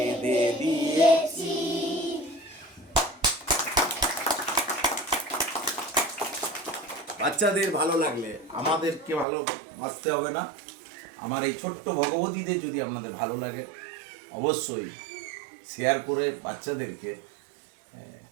দিয়েছি। বাচ্চাদের ভালো লাগলে আমাদেরকে ভালোবাসতে হবে না। আমার এই ছোট্ট ভগবতীদের যদি আপনাদের ভালো লাগে, অবশ্যই শেয়ার করে বাচ্চাদেরকে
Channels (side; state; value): left; drops out; at 9.2 s